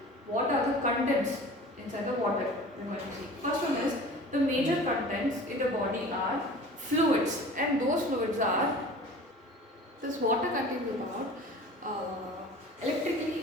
what are the contents inside the water? We're going to see. First one is the major contents in the body are fluids, and those fluids are this water contains about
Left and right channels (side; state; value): both; normal; correlation 0.41